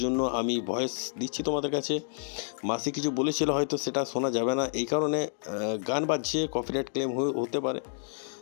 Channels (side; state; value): right; silent; digital silence